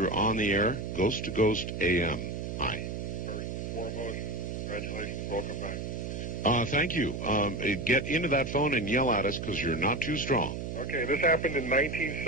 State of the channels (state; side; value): noise; right; hum, 5 dB below the sound